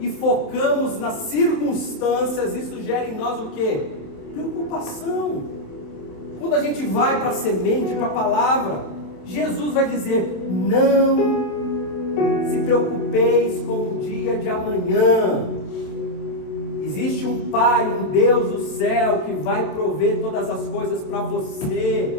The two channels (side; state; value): right; late; 27 ms